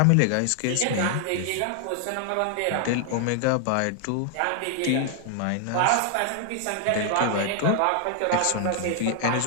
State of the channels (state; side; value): different; both; correlation 0.00